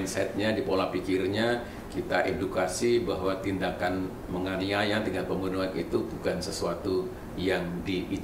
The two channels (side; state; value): both; identical; correlation 1.00